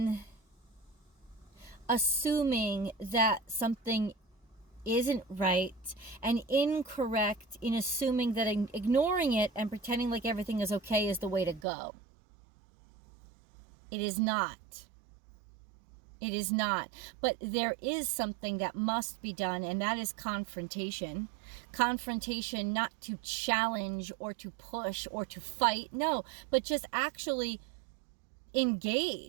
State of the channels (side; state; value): left; drops out; at 11.7 s